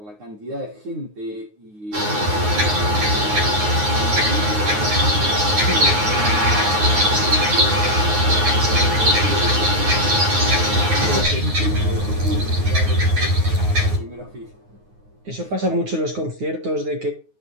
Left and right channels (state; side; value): late; left; 9.5 ms